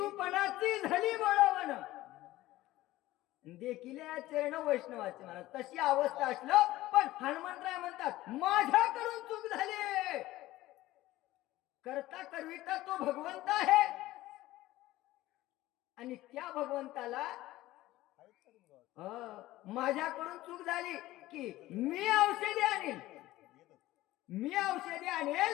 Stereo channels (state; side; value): quieter; right; 16.6 dB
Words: पणाची झाली बळवण देखील चरण वैष्णवाचे महाराज तशी अवस्था असलं पण हनुमंतराय म्हणतात माझ्याकडून चूक झाली. करता करविता तो भगवंत आहे आणि त्या भगवंताला माझ्याकडून चूक झाली की मी औषधी